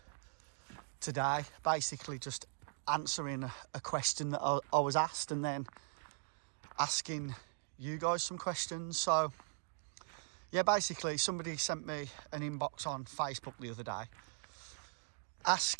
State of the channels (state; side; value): silent; left; digital silence